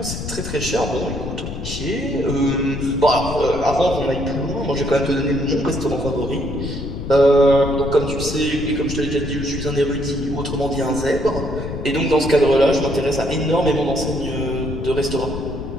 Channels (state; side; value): noise; left; rumble, 7 dB below the sound